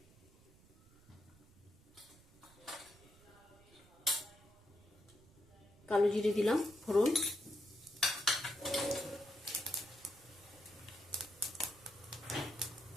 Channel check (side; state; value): right; noise; rumble, 25 dB below the sound